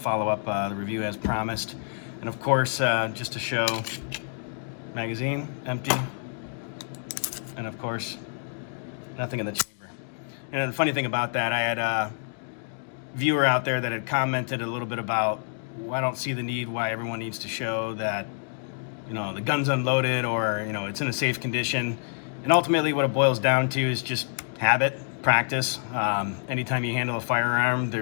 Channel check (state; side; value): silent; right; digital silence